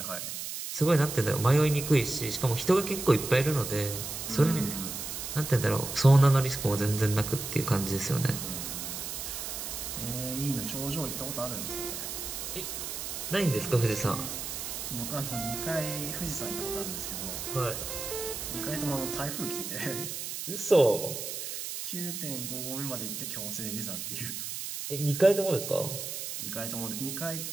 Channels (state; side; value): noise; right; hiss, 6 dB below the sound